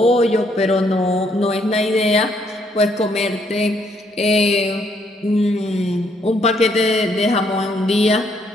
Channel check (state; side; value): normal; both; correlation 0.70